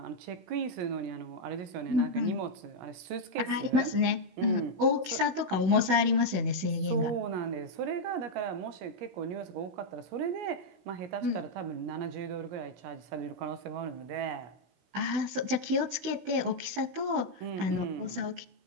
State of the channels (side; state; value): left; late; 16 ms